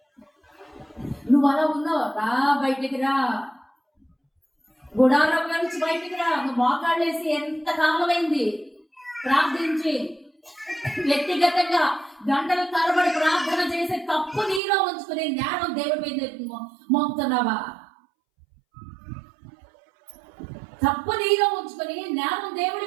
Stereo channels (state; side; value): drops out; left; at 14.6 s